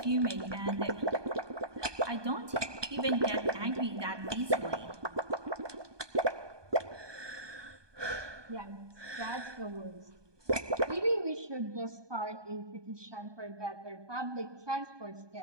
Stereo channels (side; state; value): left; late; 1.2 ms